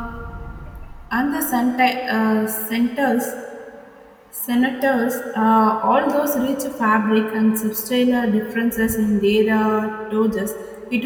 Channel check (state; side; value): identical; both; correlation 1.00